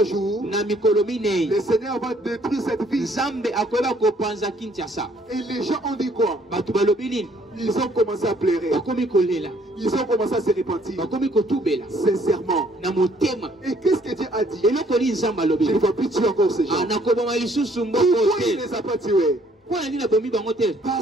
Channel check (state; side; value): normal; both; correlation 0.63